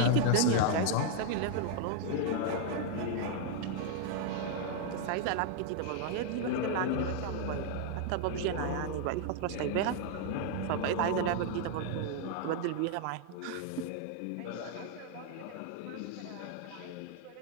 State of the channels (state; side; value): different; both; correlation 0.00